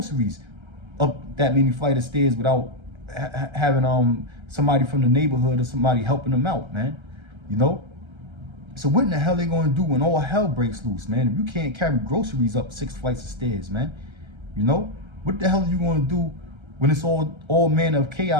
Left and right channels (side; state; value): left; late; 1.3 ms